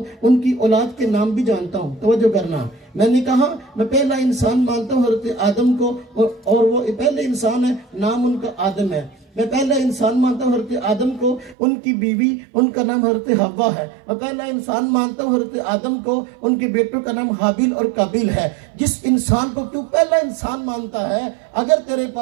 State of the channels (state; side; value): drops out; left; at 11.6 s